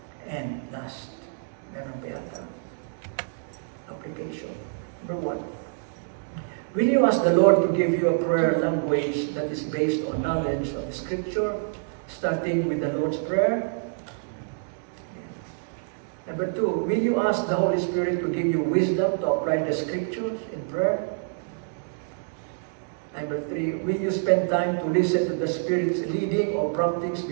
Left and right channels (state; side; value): silent; left; digital silence